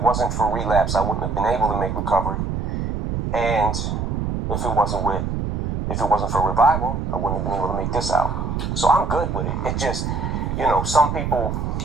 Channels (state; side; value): noise; right; rumble, 2 dB below the sound